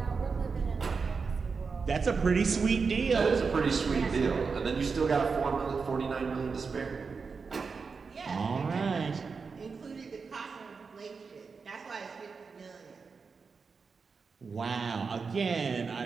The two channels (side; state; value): left; quieter; 5.0 dB